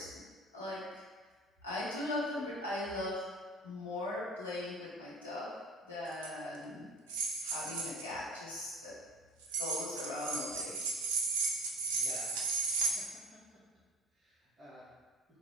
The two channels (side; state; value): both; normal; correlation 0.36